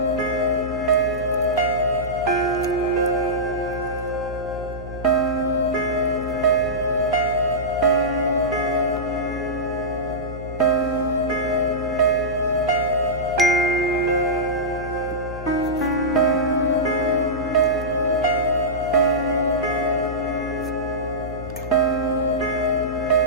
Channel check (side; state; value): left; noise; hum, 10 dB below the sound